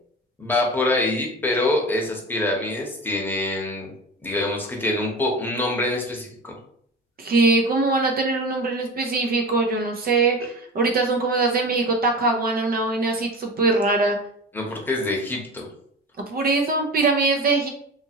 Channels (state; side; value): normal; both; correlation 0.31